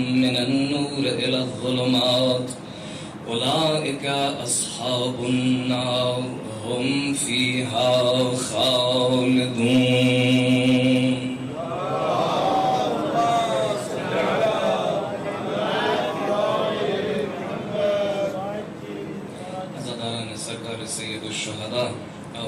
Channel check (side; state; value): both; identical; correlation 1.00